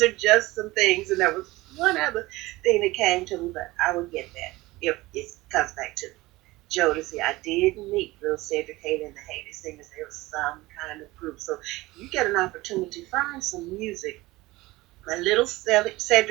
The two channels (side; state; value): left; quieter; 19.8 dB